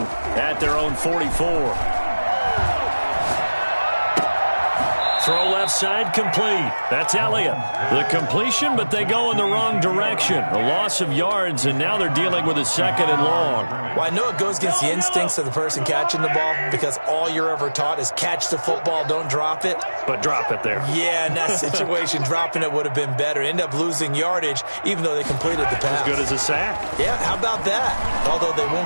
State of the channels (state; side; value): inverted; both; correlation -1.00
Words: at their own 44. Throw left side complete. That's Elliott. The completion, but they go in the wrong direction. A loss of yards, and now they're dealing with a 2nd and long. Well, I know it goes against the instincts of the person catching the ball because all you're ever taught is catch the football, don't drop it. But drop it there. Yeah, in that situation, dropping it would have been better. End up losing yardage, even though they completed the pass. As good as a sack. Yeah, how about that? Although they